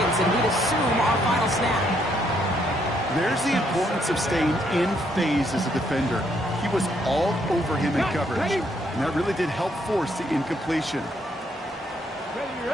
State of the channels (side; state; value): both; normal; correlation 0.72